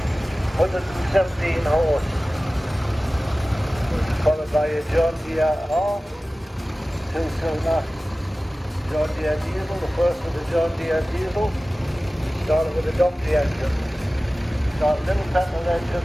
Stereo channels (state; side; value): normal; both; correlation 0.97